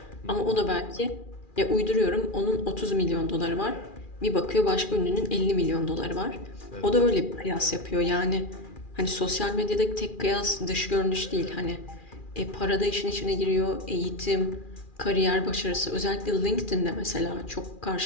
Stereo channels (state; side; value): late; right; 2.4 ms